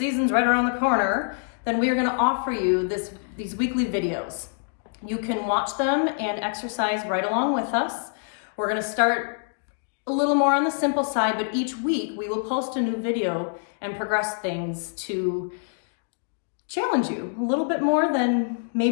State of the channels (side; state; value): right; silent; digital silence